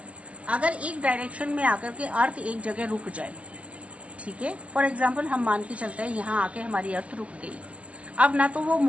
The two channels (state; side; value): late; left; 0.063 ms